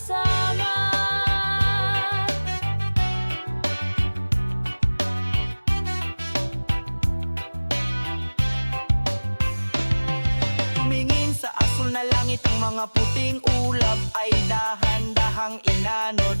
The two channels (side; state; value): both; inverted; correlation -1.00